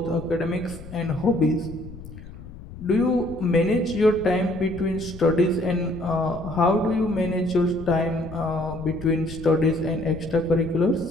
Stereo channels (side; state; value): left; noise; rumble, 14 dB below the sound